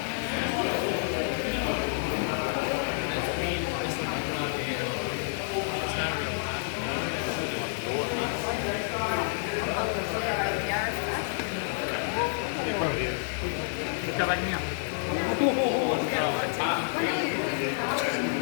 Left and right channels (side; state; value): right; silent; digital silence